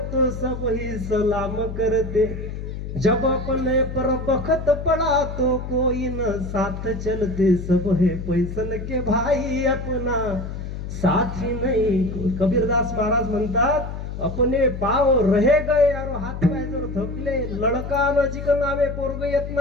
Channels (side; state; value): left; noise; hum, 7 dB below the sound